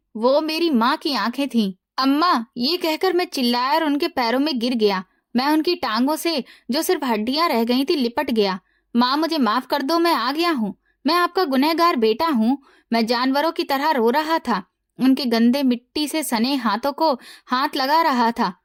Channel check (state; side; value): identical; both; correlation 1.00